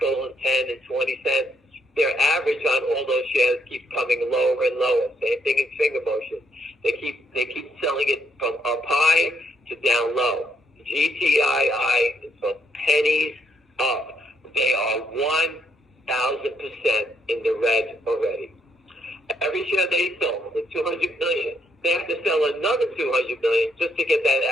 and 10 and 20 cents, their average on all those shares keeps coming lower and lower. Same thing in finger motion. They keep selling it from up high to down low. GTII is from pennies up. They are 1,000% in the red already. Every share they sold, the 200 million, they have to sell another 200 million just to get that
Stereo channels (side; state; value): both; normal; correlation 0.73